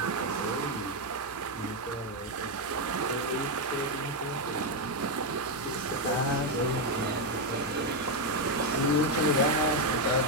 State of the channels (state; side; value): normal; both; correlation 0.03